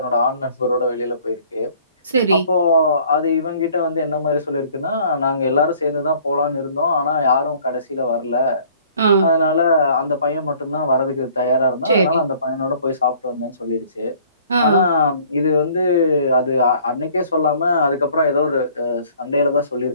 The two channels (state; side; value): inverted; both; correlation -0.56